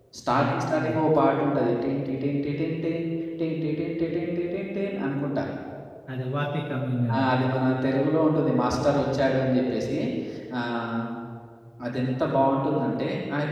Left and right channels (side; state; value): both; identical; correlation 1.00